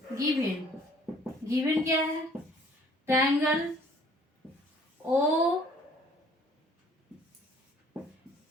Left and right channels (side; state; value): both; normal; correlation 0.56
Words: गिवन क्या है, triangle O